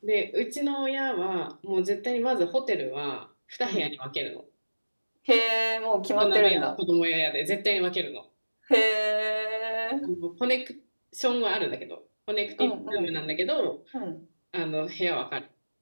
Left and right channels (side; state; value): both; inverted; correlation -1.00